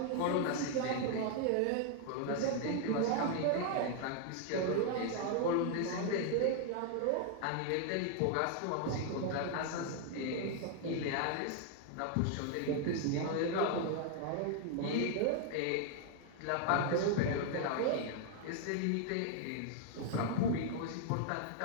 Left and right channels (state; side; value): different; both; correlation 0.00